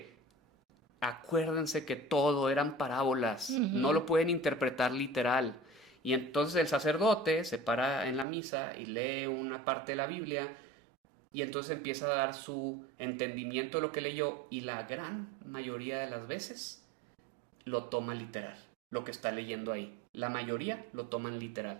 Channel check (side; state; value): left; drops out; at 8.2 s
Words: acuérdense que todo eran parábolas, no lo pueden interpretar literal. Y entonces el sacerdote se para en la misa y lee una parte de la Biblia y entonces empieza a dar su entendimiento de lo que leyó y la gran mayoría de las veces lo toma literal, lo que está leyendo ahí. La mayoría lo toman